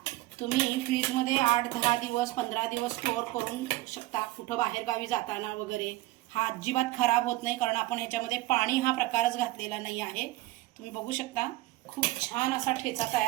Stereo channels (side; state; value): left; quieter; 18.3 dB